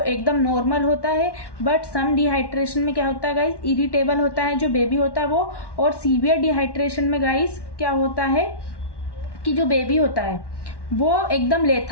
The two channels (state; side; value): late; right; 1.1 ms